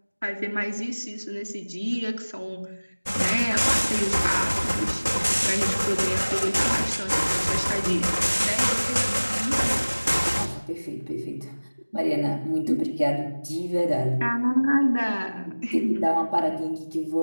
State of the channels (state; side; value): inverted; both; correlation -1.00